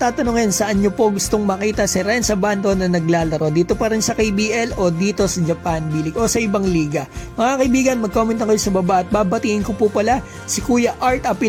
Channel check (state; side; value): identical; both; correlation 1.00